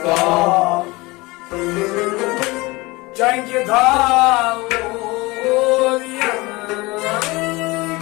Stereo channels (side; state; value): right; quieter; 22.8 dB